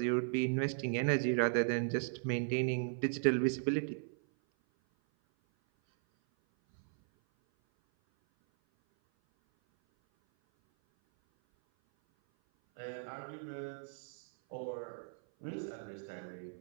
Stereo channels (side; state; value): left; silent; 53 dB below the other